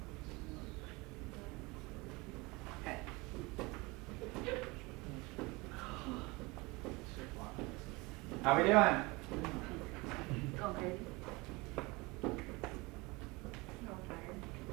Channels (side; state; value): left; quieter; 24.7 dB